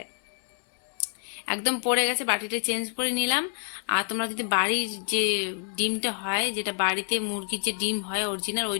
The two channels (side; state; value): right; silent; 60 dB below the other